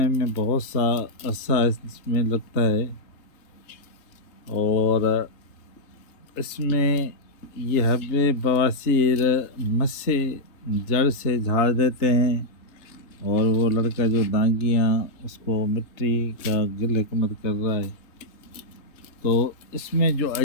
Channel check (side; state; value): right; late; 3.3 ms